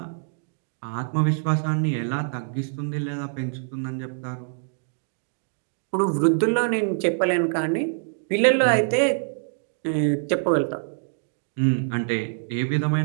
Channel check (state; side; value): silent; left; digital silence